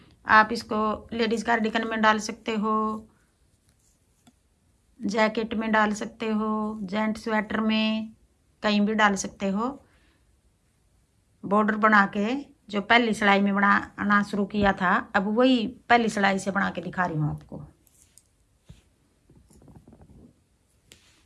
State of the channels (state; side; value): identical; both; correlation 1.00